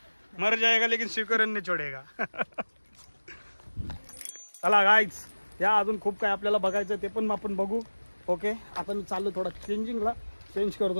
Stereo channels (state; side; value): inverted; both; correlation -1.00